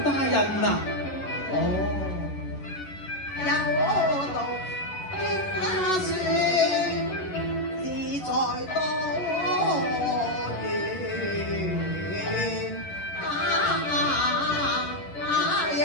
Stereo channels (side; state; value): right; late; 11 ms